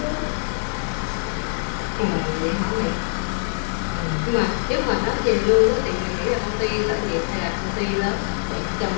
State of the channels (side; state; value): right; silent; 63 dB below the other